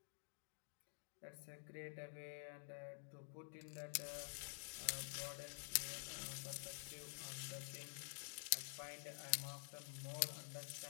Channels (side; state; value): right; silent; digital silence